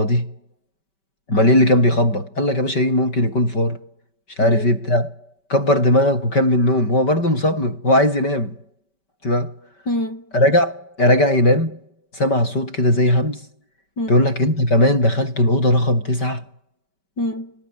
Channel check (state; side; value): late; right; 5.2 ms